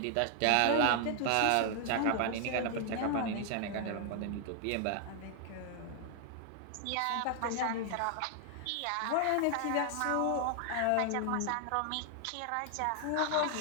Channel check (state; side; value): different; both; correlation 0.00